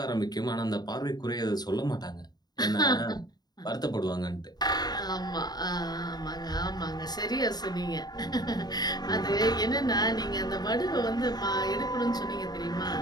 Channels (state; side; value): late; right; 0.20 ms